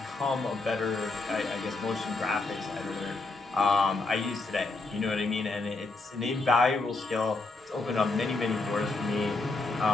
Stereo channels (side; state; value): right; quieter; 3.4 dB